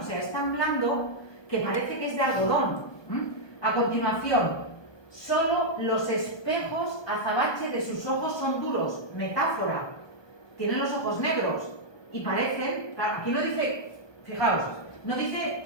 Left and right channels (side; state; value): right; late; 1.2 ms